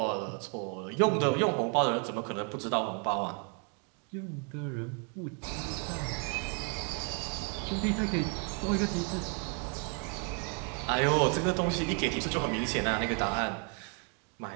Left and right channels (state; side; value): quieter; left; 37.9 dB